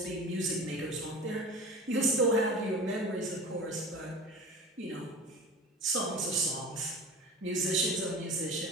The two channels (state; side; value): normal; both; correlation 0.35